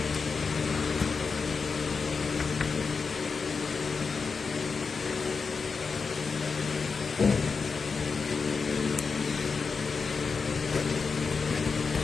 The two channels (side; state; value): right; quieter; 5.0 dB